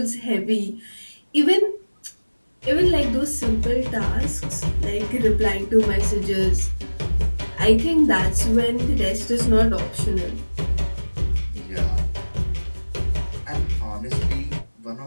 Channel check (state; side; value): inverted; both; correlation -1.00